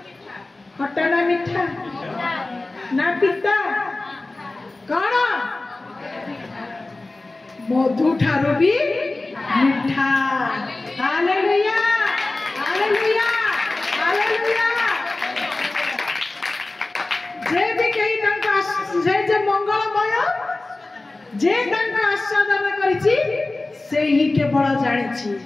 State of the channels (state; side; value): quieter; right; 3.1 dB